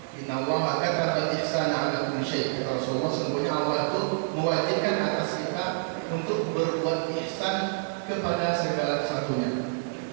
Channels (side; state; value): left; silent; digital silence